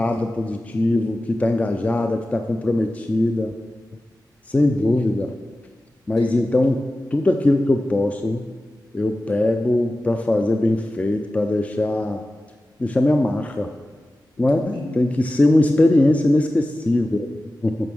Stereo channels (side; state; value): both; normal; correlation 0.95